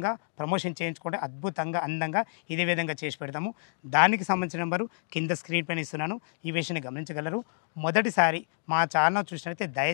ప్రమోషన్ చేయించుకుంటే అద్భుతంగా అందంగా ఇదే విధంగా చేసి పెడతాము. దానికి సంబంధించిన నెంబరు కింద స్క్రీన్ పైన ఇస్తున్నాను. ఈ విషయాన్ని గమనించగలరు. మొదటిసారి మా ఛానల్ చూసినట్లయితే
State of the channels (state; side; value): silent; right; digital silence